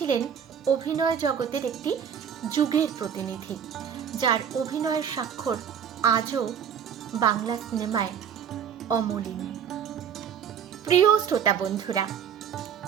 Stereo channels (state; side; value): quieter; left; 8.0 dB